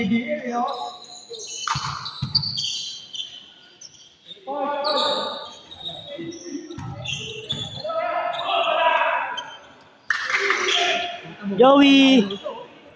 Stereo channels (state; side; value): identical; both; correlation 1.00